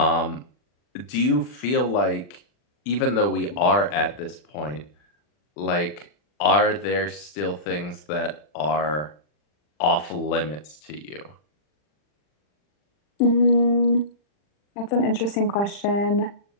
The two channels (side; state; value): right; late; 40 ms